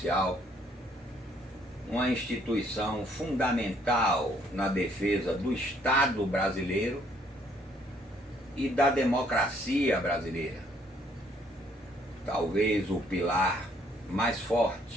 uma instituição fundamental na defesa do Estado brasileiro e da democracia brasileira. Talvez o pilar mais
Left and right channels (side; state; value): both; normal; correlation 0.65